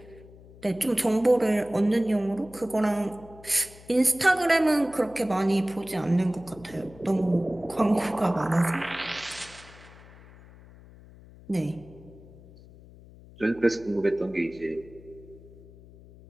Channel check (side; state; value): left; noise; hum, 21 dB below the sound